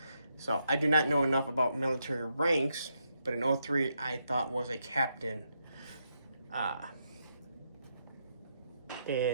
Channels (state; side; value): inverted; both; correlation -0.80